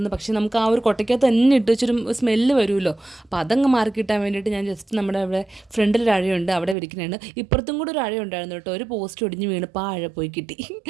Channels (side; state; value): left; drops out; at 6.8 s